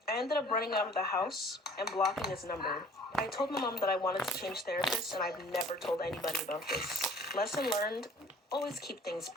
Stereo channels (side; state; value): both; normal; correlation 0.52